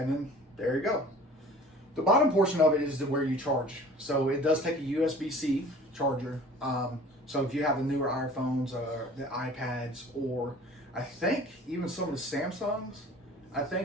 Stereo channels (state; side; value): normal; both; correlation 0.46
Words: then there you go. The bottom portion of it is where you charge. So it does take a USB-C charger. So if you have the newer iPhones or the iPads, or I think even some of the Samsungs,